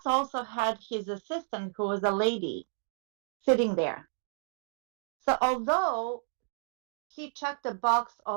also had his assistant, who was a lady, sitting there. So although he checked the box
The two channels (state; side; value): silent; left; digital silence